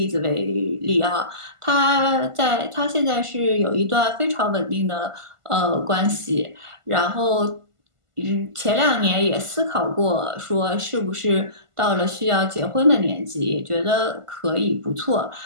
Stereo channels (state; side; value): late; left; 1.5 ms